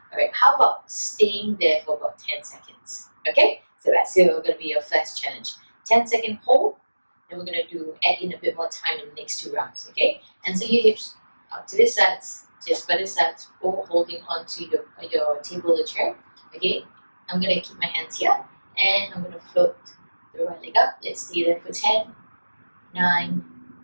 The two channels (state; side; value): inverted; both; correlation -1.00